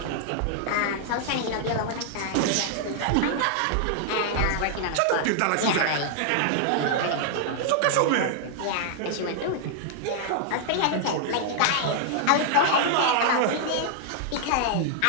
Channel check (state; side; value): different; both; correlation -0.01